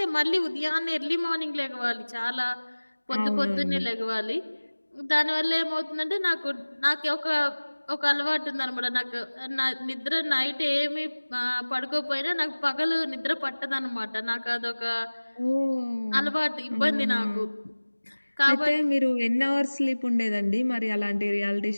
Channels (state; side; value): inverted; both; correlation -1.00